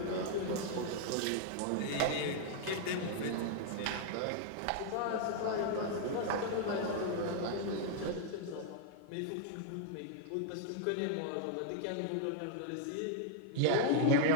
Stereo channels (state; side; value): different; both; correlation 0.00